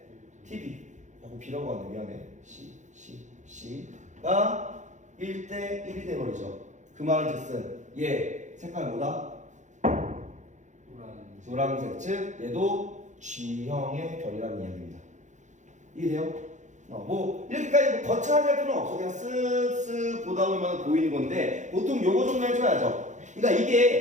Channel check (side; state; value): left; late; 0.35 ms